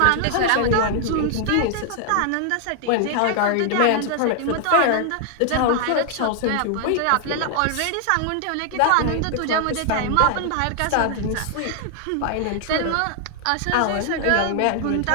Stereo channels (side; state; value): both; different; correlation 0.00